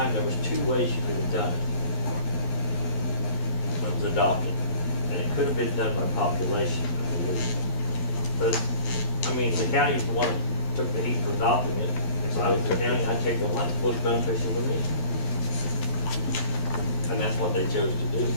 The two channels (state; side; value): late; right; 11 ms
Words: there was 2 ways you could have done it when it was adopted. And it could have been done by population, I believe. But, I mean, the county is the one that took the heat for adopting it. If I was the county, I'd take the one that's most beneficial to me. And that's what they chose to do.